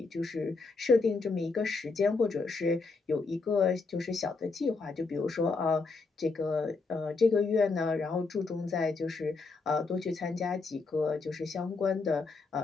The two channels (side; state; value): right; quieter; 4.1 dB